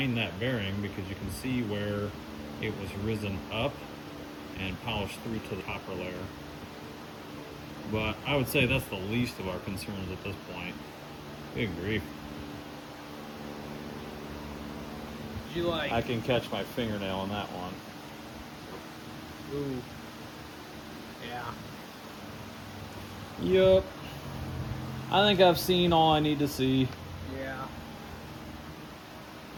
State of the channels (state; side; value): identical; both; correlation 1.00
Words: that bearing because you can see where it was risen up and polished through to the copper layer. But I would say that's the least of our concerns at this point. Good grief. Did you like? I can catch my fingernail in that one. Ooh. Yeah. Yup. I think I've seen all I need to see. Yeah.